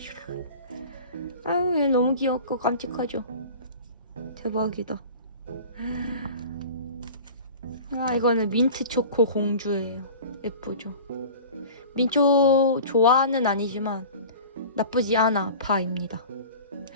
아유 얘 너무 귀엽고 깜찍하죠? 대박이다. 아 이거는 민트 초코 공주예요. 예쁘죠? 민초 좋아는 아니지만 나쁘지 않아 파입니다.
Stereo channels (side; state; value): both; inverted; correlation -0.39